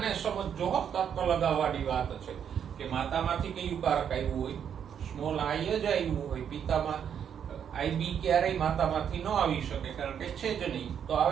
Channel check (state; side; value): quieter; left; 8.3 dB